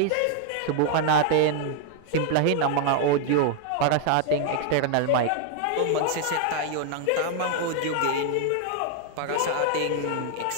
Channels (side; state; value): both; different; correlation 0.00